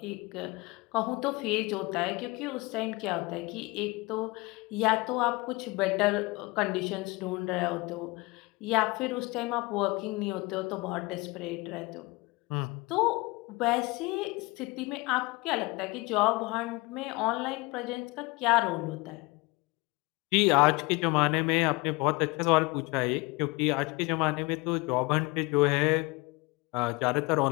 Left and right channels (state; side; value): quieter; right; 24.5 dB